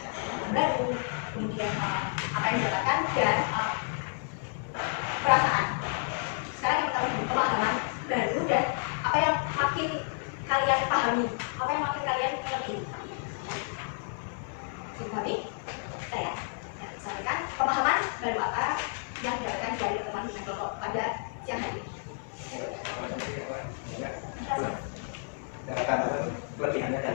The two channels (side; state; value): right; silent; 57 dB below the other